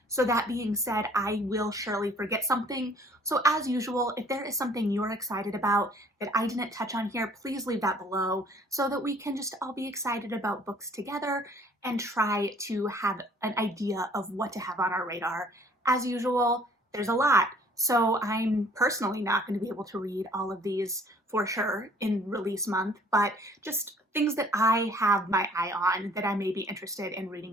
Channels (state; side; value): normal; both; correlation 0.56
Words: So that being said, I will surely forget something. So as usual, if there is something you're excited about that I didn't touch on here, please leave that below so that we can just all be excited about books together and try to have an idea of what to have on our radar. As usual, there's a lot. So I'm personally not going to be able to read all of these for sure in release month, but just things that I have my eye on that I may be interested in